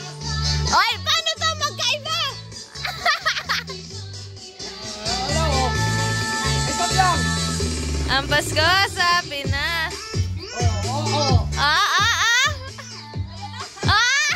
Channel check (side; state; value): both; identical; correlation 1.00